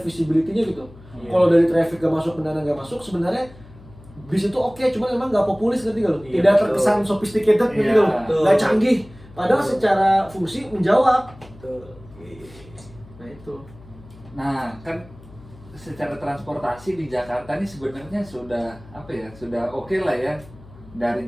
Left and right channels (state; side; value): noise; left; hum, 21 dB below the sound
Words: gitu. Kalau dari traffic gak masuk, benar nggak masuk, sebenarnya bis itu oke, cuman emang nggak populis ngerti gak lo? Tidak terkesan sophisticated ngerti gak lo? Nggak canggih, padahal secara fungsi menjawab. Nah itu. Nah, kan secara transportasi di Jakarta ini sebenarnya sudah sudah oke lah ya. Dari